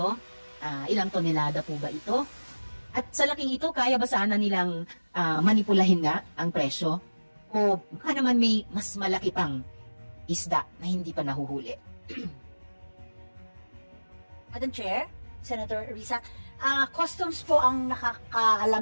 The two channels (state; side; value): inverted; both; correlation -1.00